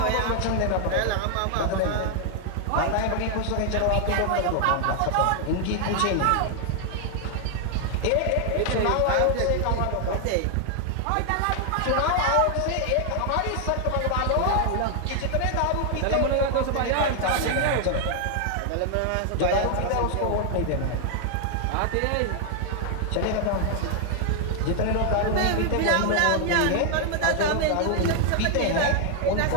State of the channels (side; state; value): both; different; correlation 0.00